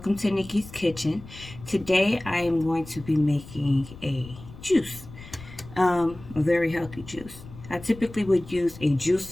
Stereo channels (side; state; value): left; noise; rumble, 17 dB below the sound